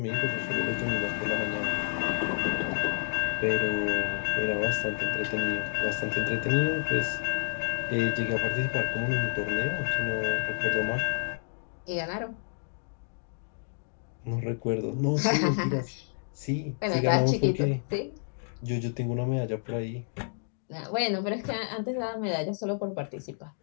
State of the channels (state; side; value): silent; right; digital silence